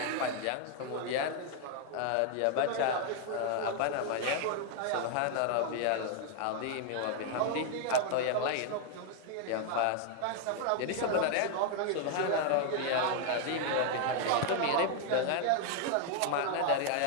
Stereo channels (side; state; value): both; different; correlation 0.00